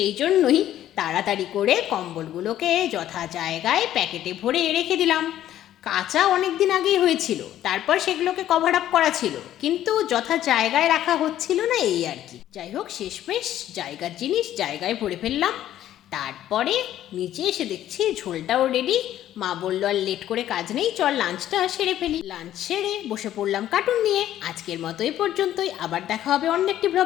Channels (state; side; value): quieter; right; 12.3 dB